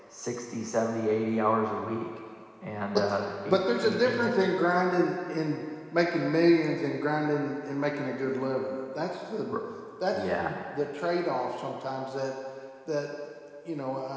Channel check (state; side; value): identical; both; correlation 1.00